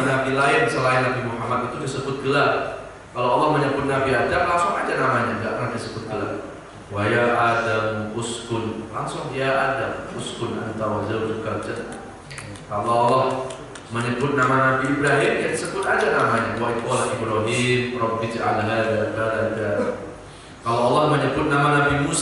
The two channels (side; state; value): both; identical; correlation 1.00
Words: lain selain Nabi Muhammad itu disebut gelar. Kalau Allah menyebut Nabi Adam, langsung aja namanya, tidak pernah disebut gelar. Wa ya Adam uskun, langsung ya Adam uskun anta wa zawjukal jannah. Kalau Allah menyebut nama Nabi Ibrahim, ya disebut aja namanya. Wa qala Ibrahim rabbi ij'al hadza balada. Kalau Allah menyebut nama Nabi